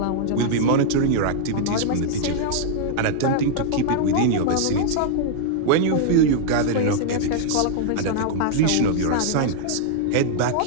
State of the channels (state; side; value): different; both; correlation -0.01